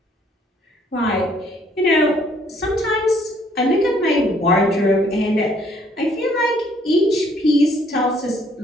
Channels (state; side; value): normal; both; correlation 0.64